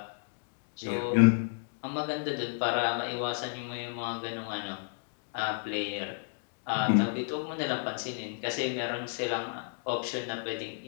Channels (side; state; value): right; silent; 56 dB below the other